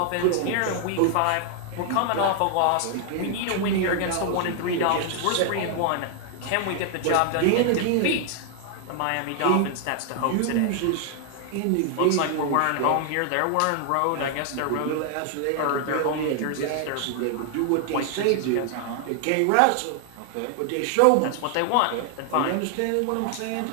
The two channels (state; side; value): different; both; correlation 0.00